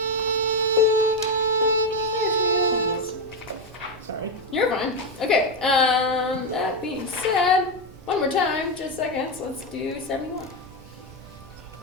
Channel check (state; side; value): normal; both; correlation 0.08